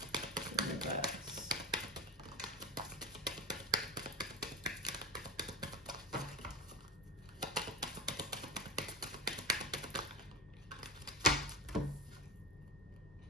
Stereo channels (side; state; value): both; normal; correlation 0.25